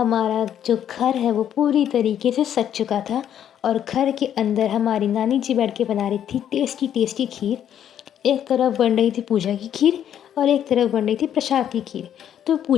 जो घर है वो पूरी तरीके से सज चुका था, और घर के अंदर हमारी नानी जी बैठ के बना रही थी टेस्टी टेस्टी खीर। एक तरफ बन रही थी पूजा की खीर, और एक तरफ बन रही थी प्रसाद की खीर। तो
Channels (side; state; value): right; quieter; 9.9 dB